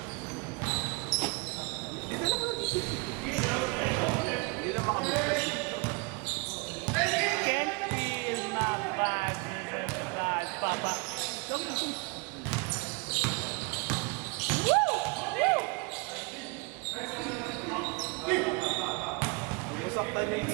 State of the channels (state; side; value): quieter; left; 30.5 dB